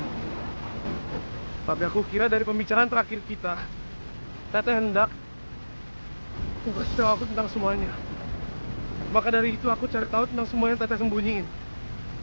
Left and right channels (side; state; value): both; inverted; correlation -1.00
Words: Tapi aku kira dari pembicaraan terakhir kita, Teteh hendak kasih tahu aku tentang semuanya. Maka dari itu aku cari tahu tentang semua yang Teteh sembunyiin.